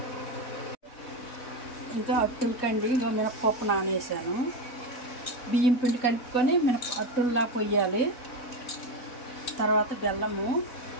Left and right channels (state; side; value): late; right; 4.0 ms